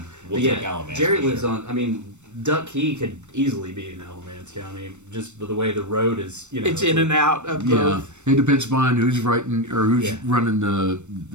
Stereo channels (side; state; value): left; late; 0.84 ms